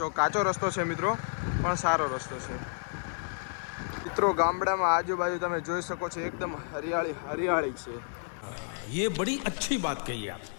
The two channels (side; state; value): right; silent; 57 dB below the other